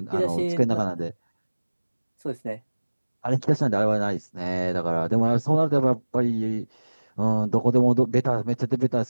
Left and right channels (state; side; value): inverted; both; correlation -1.00